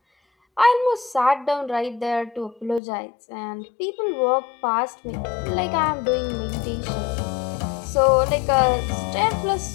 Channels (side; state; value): right; drops out; at 2.8 s